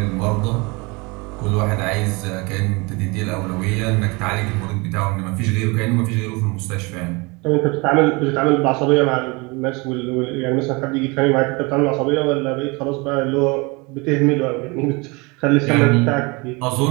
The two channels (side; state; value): left; quieter; 27.0 dB